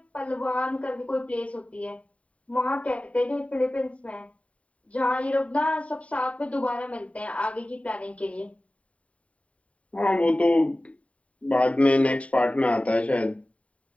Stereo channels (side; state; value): right; late; 0.065 ms